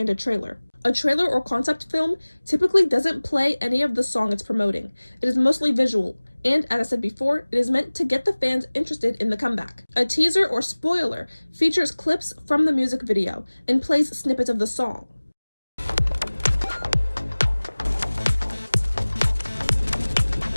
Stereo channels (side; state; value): both; inverted; correlation -1.00